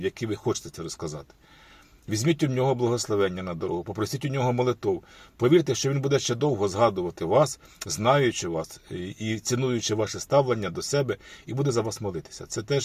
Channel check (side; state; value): both; identical; correlation 1.00